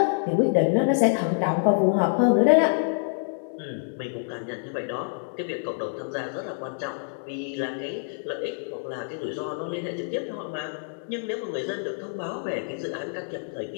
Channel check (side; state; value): right; silent; digital silence